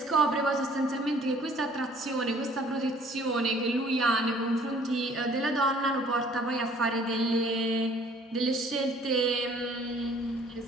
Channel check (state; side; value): normal; both; correlation 0.55